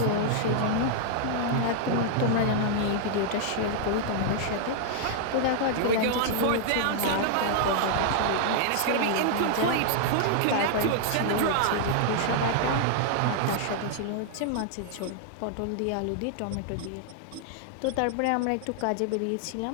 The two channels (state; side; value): different; both; correlation -0.01